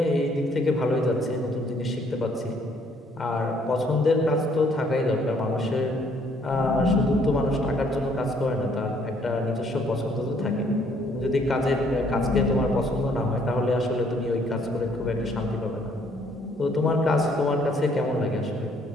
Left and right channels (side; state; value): both; normal; correlation 0.65